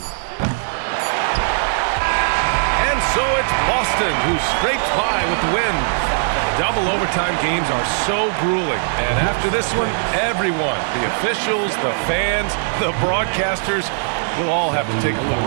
And so it's Boston who scrapes by with the win. Double overtime games are so grueling. And after this one, everyone, the officials, the fans, the broadcasters, will all have to take a little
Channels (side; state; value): left; silent; digital silence